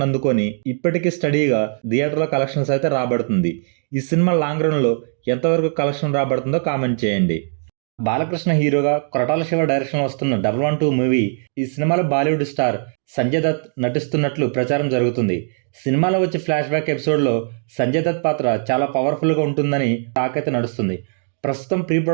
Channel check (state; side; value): silent; left; 61 dB below the other